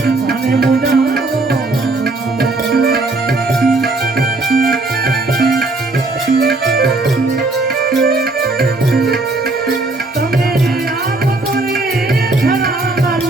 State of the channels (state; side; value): quieter; left; 3.2 dB